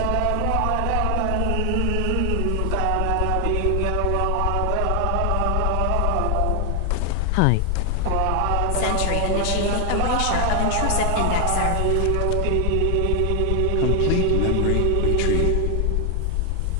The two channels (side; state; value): both; different; correlation 0.00